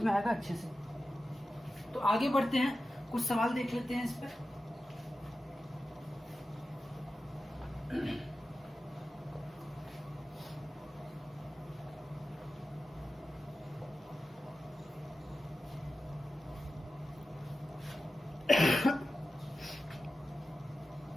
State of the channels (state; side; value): normal; both; correlation 0.93